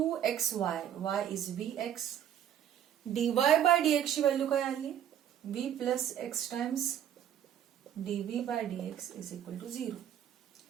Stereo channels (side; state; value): left; quieter; 10.1 dB